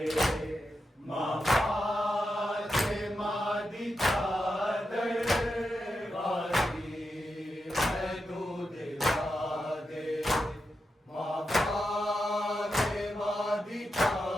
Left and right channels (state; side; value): normal; both; correlation 0.87